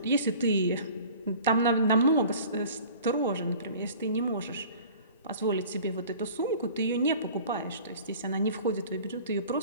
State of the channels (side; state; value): both; inverted; correlation -0.45